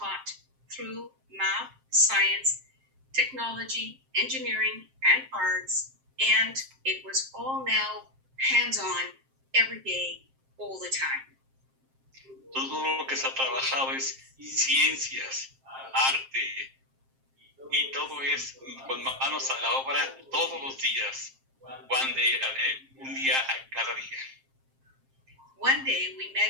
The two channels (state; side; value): late; left; 7.5 ms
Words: through math, science, technology, engineering, and arts, and it was all now hands-on, every day, all the time. Todo lo que se ha trabajado es ciencias, arte, y todo es con manos a la obra todos los días, un día a cada día. One day we